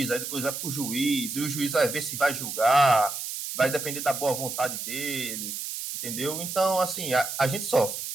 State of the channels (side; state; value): right; noise; hiss, 6 dB below the sound